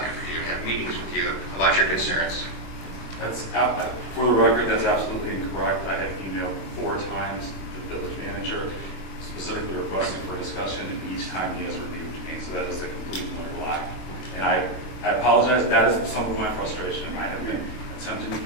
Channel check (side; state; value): right; late; 24 ms